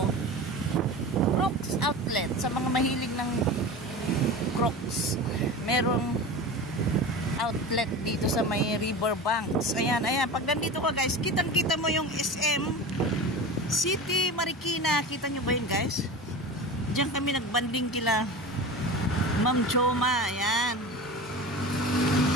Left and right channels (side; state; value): both; normal; correlation 0.31